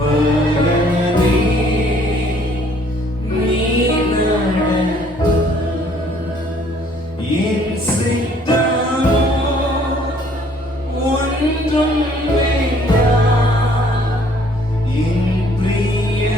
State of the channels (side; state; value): both; normal; correlation 0.60